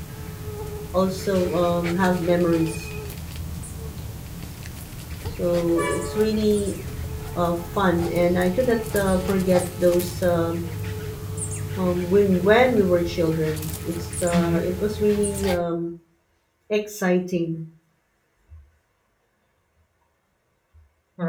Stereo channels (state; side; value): identical; both; correlation 1.00